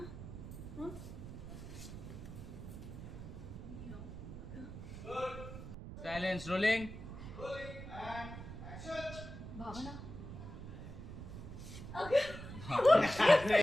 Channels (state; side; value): noise; right; rumble, 10 dB below the sound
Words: हं? सायलेन्स. रोलिंग. भावना,